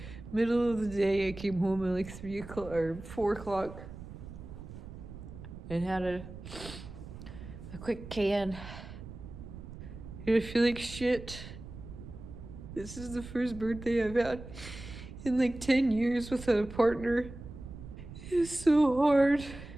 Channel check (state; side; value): noise; right; rumble, 13 dB below the sound